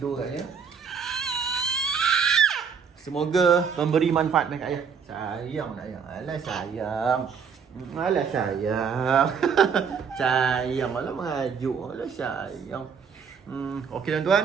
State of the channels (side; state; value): left; quieter; 6.5 dB